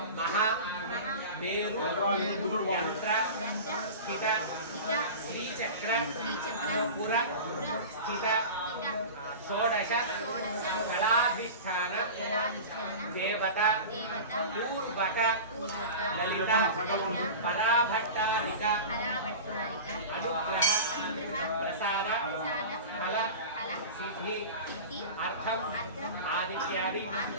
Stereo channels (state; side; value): inverted; both; correlation -0.32